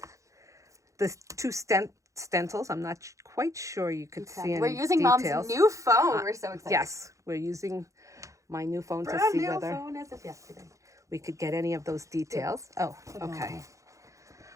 the two stencils. I'm not quite sure you could see any We're using details. Mom's new phone. We're so excited. Yes, we're using my new phone to Brand see new whether phone as of yesterday. we could get any of those details. Oh, okay.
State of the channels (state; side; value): late; left; 0.15 ms